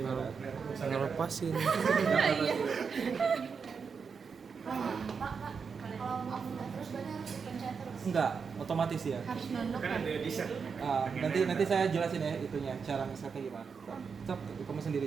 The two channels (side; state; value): left; quieter; 5.8 dB